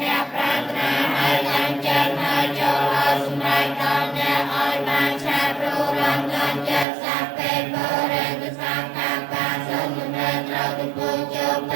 អ្នកប្រាថ្នាហើយចាំចិត្តហើយចូលឲ្យសម្រេចដល់អ្នកឲ្យបានឆាប់ព្រោះរំលងចិត្តសាពេលបរិទសង្ឃបាសូមមិនត្រូវទៅពូជោប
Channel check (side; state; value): left; drops out; at 6.9 s